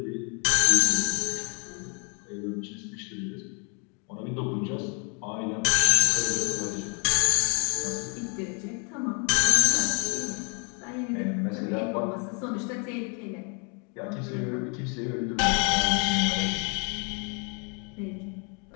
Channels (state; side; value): quieter; right; 36.1 dB